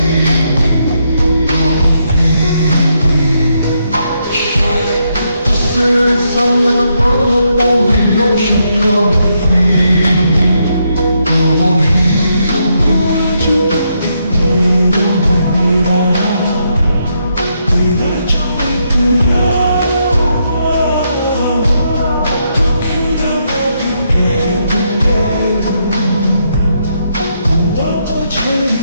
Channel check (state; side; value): inverted; both; correlation -0.79